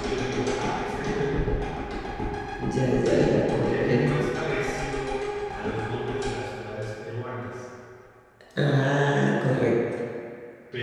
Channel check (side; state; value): both; identical; correlation 1.00